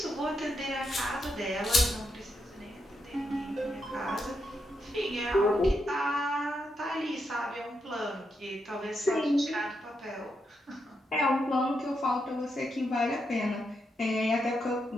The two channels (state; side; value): normal; both; correlation 0.82